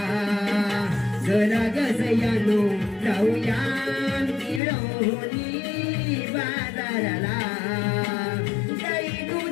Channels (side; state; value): right; drops out; at 4.6 s